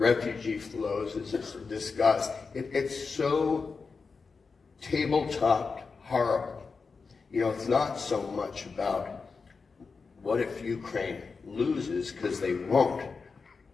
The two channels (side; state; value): right; quieter; 4.8 dB